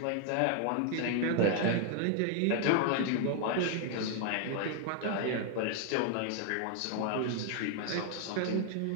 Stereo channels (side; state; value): both; different; correlation 0.00